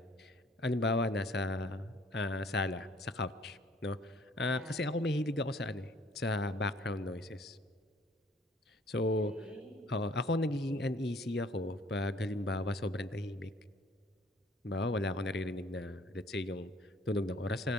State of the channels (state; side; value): normal; both; correlation 0.58